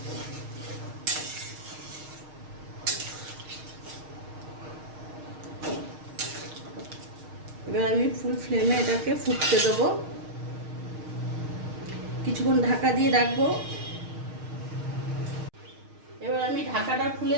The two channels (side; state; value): left; late; 6.5 ms